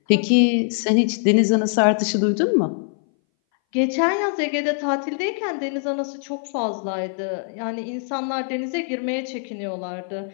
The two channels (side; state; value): right; silent; 60 dB below the other